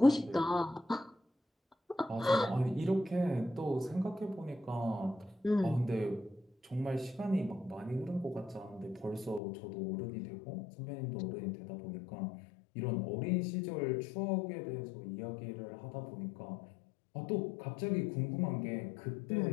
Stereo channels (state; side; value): drops out; right; at 9.4 s